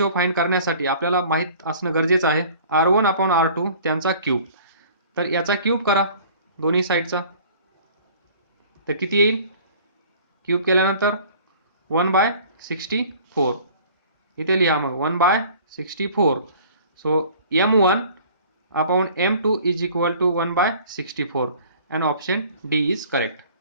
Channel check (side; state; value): both; inverted; correlation -0.49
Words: फाइंड करण्यासाठी आपल्याला माहित असणं गरजेचं आहे r1 अपॉन r2 त्यांचा क्यूब. तर याचा क्यूब करा दोन्ही साईडचा, तर किती येईल? क्यूब केल्यानंतर 1/64. इथे लिहा मग 1/64. So m1 upon m2 is equal to 1/64 and option D is correct.